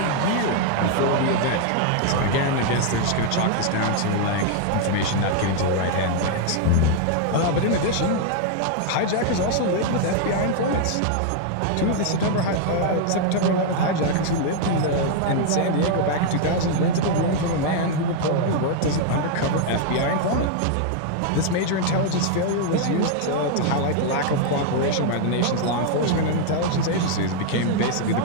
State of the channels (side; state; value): both; different; correlation 0.00